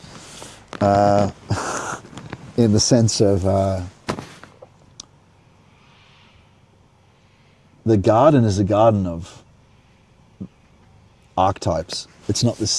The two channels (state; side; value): identical; both; correlation 1.00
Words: In the sense of the garden is a garden of archetypes. It's not this